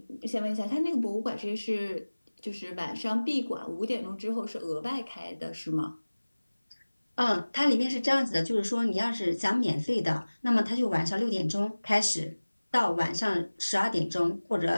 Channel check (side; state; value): both; inverted; correlation -1.00